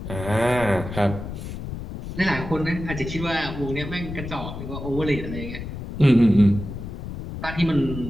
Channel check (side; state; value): left; noise; rumble, 8 dB below the sound